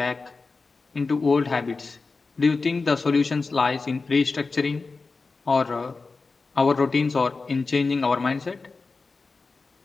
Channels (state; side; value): quieter; right; 4.1 dB